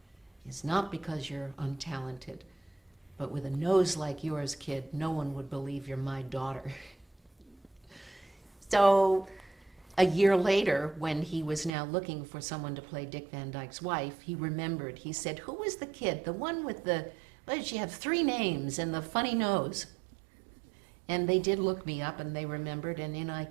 is not because you're untalented, but with a nose like yours, kid, no one would believe you're my daughter. So a year later, when he was now looking for someone to play Dick Van Dyke's wife, he remembered. He said, who was the kid, the one with the, what did she have, 3 names and the funny nose? And they did look me up, and they remembered, and in I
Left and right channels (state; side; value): drops out; left; at 11.7 s